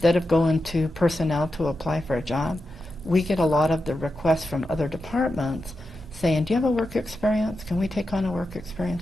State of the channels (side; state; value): both; normal; correlation 0.89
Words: of going to personnel to apply for a job, we get a lot of the requests from other departments saying, do you have a work experience? Can we take on a work experience